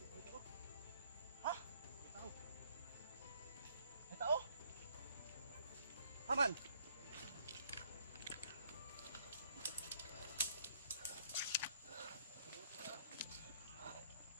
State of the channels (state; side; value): inverted; both; correlation -0.63